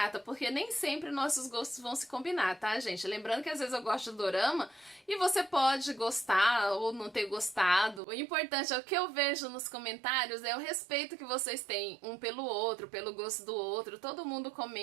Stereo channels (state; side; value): drops out; left; at 8.0 s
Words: porque nem sempre nossos gostos vão se combinar, tá, gente? Lembrando que às vezes eu gosto de dorama e você pode gostar ou não ter gostado. O importante é o que eu vejo nos comentários, é o respeito que vocês têm um pelo outro, pelo gosto do outro. Todo mundo